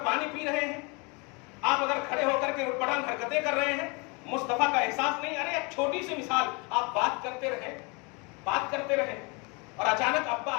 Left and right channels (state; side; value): quieter; right; 30.2 dB